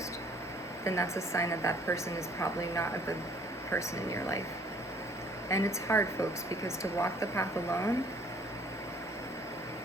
then that's a sign that that person is probably not a good person in your life. And it's hard, folks, because to walk the path alone,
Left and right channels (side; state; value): both; normal; correlation 0.58